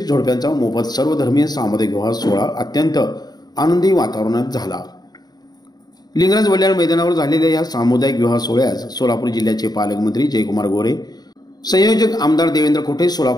जोडप्यांचा मोफत सर्वधर्मीय सामुदायिक विवाह सोहळा अत्यंत आनंदी वातावरणात झाला। लिंगराज वल्याळ मैदानावर झालेल्या या सामुदायिक विवाह सोहळ्यास सोलापूर जिल्ह्याचे पालकमंत्री जयकुमार गोरे, संयोजक आमदार देवेंद्र कोठे,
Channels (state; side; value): late; right; 0.19 ms